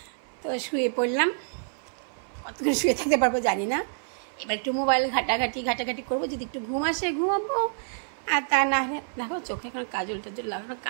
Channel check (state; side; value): silent; left; 60 dB below the other